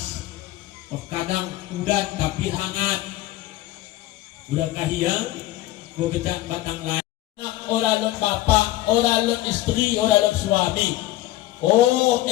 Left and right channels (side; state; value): right; quieter; 16.1 dB